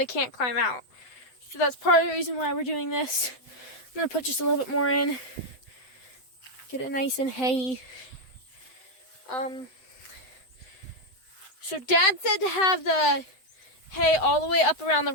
can't climb out. So that's part of the reason why we're doing this. I'm going to put just a little bit more in. Get it nice and hay. So Dad said to have the hay all the way up around the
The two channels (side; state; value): right; late; 7.9 ms